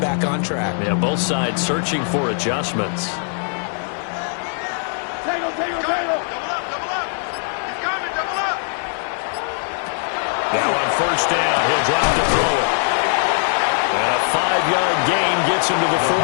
on track? Yeah, both sides searching for adjustments. Now on first down, he'll drop to throw it. And a 5-yard gain gets him to the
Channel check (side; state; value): right; silent; 63 dB below the other